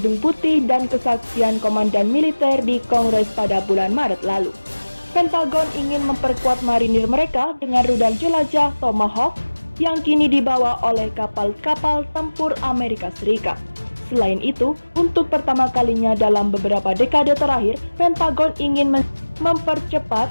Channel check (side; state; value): both; inverted; correlation -1.00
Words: Putih dan kesaksian komandan militer di Kongres pada bulan Maret lalu. Pentagon ingin memperkuat marinir mereka dengan rudal jelajah Tomahawk yang kini dibawa oleh kapal-kapal tempur Amerika Serikat. Selain itu, untuk pertama kalinya dalam beberapa dekade terakhir, Pentagon ingin mempercepat